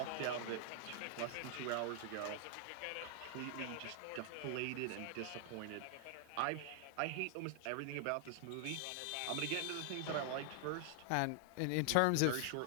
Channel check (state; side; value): different; both; correlation 0.00